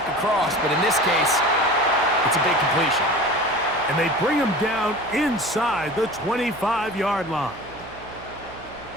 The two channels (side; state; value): right; noise; hum, 19 dB below the sound